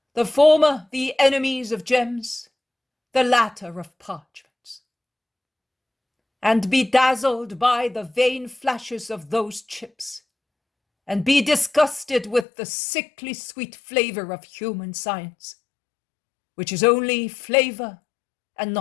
the former the enemies of gems, the latter of parchments, and be dazzled by the vain flashes of those chips, and be disgusted with the sickly sweet flavor of human science, which is only flavor and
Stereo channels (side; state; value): right; drops out; at 12.5 s